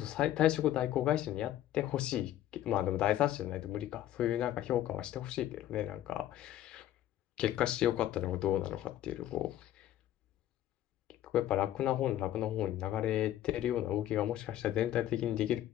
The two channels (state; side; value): quieter; right; 12.7 dB